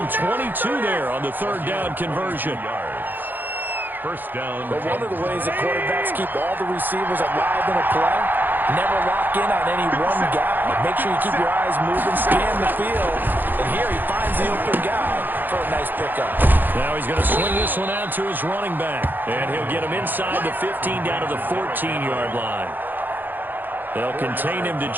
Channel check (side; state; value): left; late; 0.089 ms